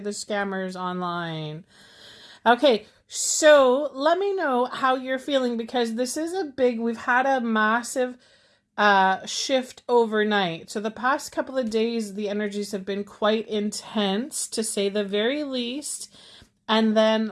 the scammers online. Okay, so let me know how you're feeling because this is we've had a massive shift overnight. So the past couple of days, the energies have been quite intense, to say the very least. And then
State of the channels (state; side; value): identical; both; correlation 1.00